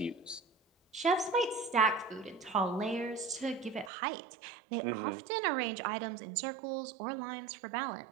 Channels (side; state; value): left; drops out; at 3.9 s